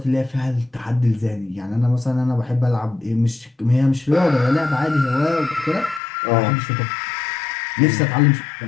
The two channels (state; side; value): drops out; right; at 6.0 s